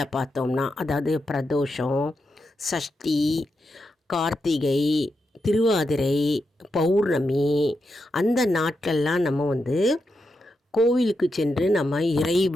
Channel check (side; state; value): both; normal; correlation 0.86